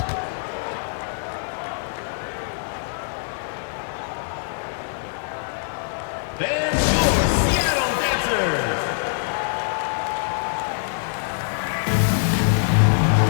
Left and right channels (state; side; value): silent; right; 57 dB below the other